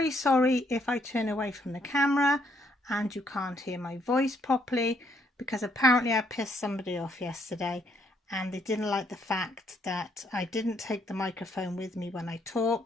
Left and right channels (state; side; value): normal; both; correlation 0.70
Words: sorry if I turn away from the camera and you can't hear my voice properly, because apparently I pissed somebody off yesterday and they didn't like the fact that I didn't take the microphone with me when I